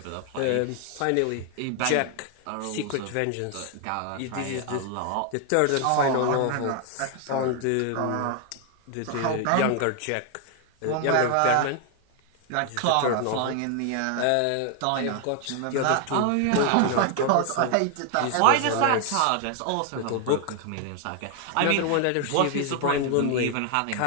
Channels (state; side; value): different; both; correlation 0.00